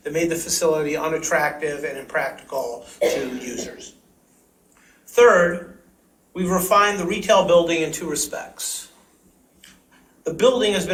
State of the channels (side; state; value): both; identical; correlation 1.00